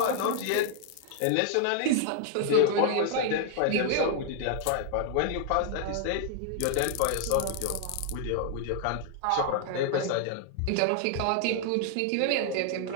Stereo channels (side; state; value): both; different; correlation 0.00